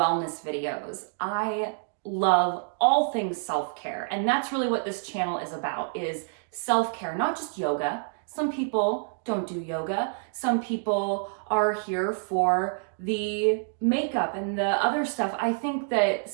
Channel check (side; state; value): left; silent; digital silence